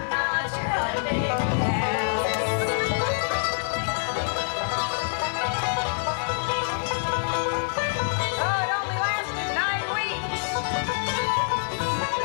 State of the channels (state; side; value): silent; right; digital silence